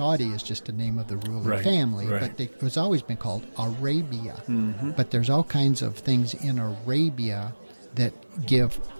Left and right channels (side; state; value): both; inverted; correlation -1.00